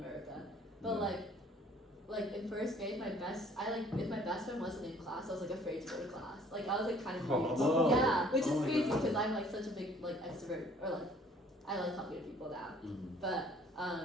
But Yeah. like in first grade, if my best friend wasn't in class, I was like afraid to go to class. Like I was like kind of weird. Whoa. Yeah, which is Oh my crazy God. because I'm like such a big like extrovert, or like I like talking to people now. Mhm. But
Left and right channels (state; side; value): normal; both; correlation 0.57